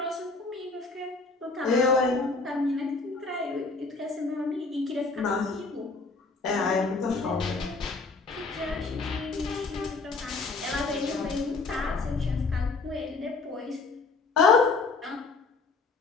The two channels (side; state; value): right; quieter; 4.0 dB